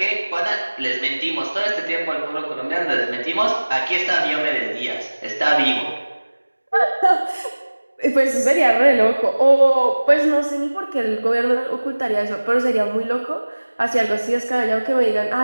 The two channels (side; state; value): both; inverted; correlation -1.00